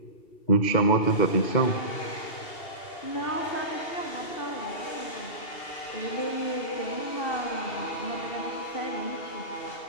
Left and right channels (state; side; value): late; right; 2.7 ms